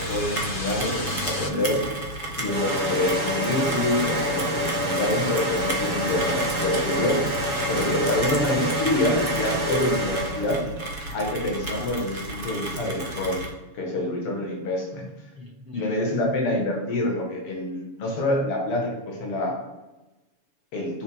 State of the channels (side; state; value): right; late; 7.1 ms